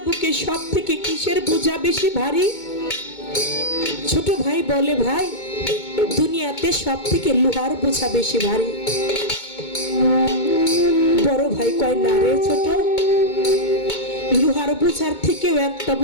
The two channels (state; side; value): late; right; 2.2 ms